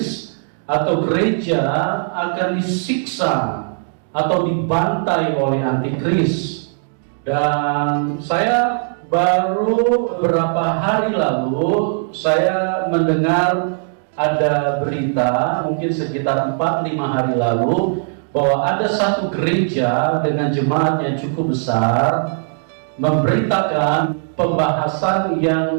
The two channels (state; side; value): silent; left; digital silence